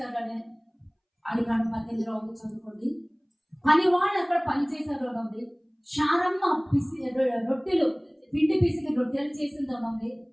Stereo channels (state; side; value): identical; both; correlation 1.00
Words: అడిగాడు. 18 ఉంది చదువుకోండి. పని వాళ్ళు అక్కడ పని చేశారు ఉంది. శారమ్మ రొట్టెలు పిండి పిసికి రొట్టెలు చేసింది ఉంది.